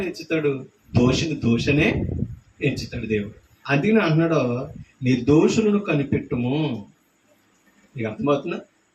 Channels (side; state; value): both; identical; correlation 1.00